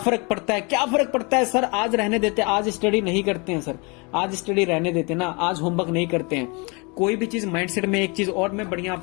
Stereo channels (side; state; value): right; quieter; 30.2 dB